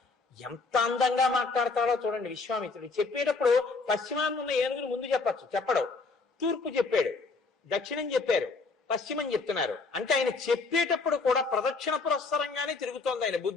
ఎంత అందంగా మాట్లాడతాడో చూడండి విశ్వామిత్రుడు. చెప్పేటప్పుడు పశ్చిమాన్ని ఉన్న ఏనుగులు ముందు చెప్పచ్చు, చెప్పడు. తూర్పు చెప్పాడు, దక్షిణం చెప్పారు, పశ్చిమం చెప్తున్నారు. అంటే ఆయన చెప్పేటప్పుడు కూడా ప్రదక్షిణ పురస్సరంగానే తిరుగుతోంది ఆయన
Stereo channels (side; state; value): right; quieter; 4.1 dB